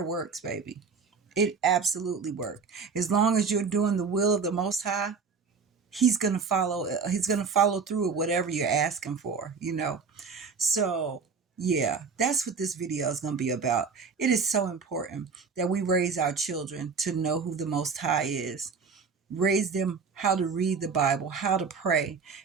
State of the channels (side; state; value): left; quieter; 5.4 dB